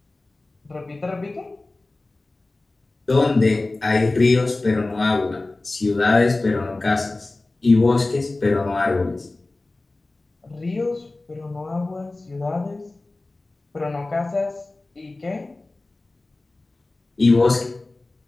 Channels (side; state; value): right; quieter; 3.1 dB